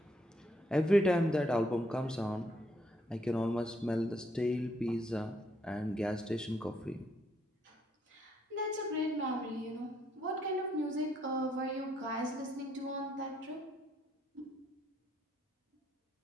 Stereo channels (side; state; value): both; normal; correlation 0.72